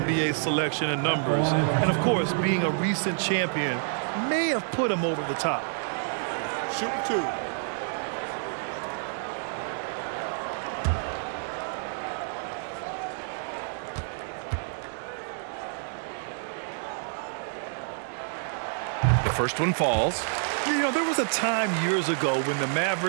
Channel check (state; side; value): silent; left; digital silence